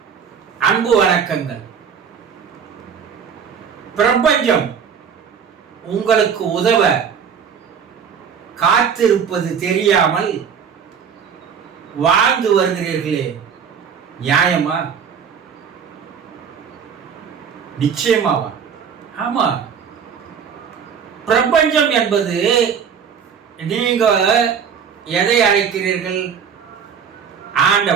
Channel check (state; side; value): quieter; left; 7.1 dB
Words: அன்பு வணக்கங்கள். பிரபஞ்சம் உங்களுக்கு உதவ காத்திருப்பது தெரியாமல் வாழ்ந்து வருகிறீர்களே, நியாயமா? நிச்சயமாவா? ஆமா. பிரபஞ்சம் என்பது நீங்க எதை அழைக்கிறீர்கள்?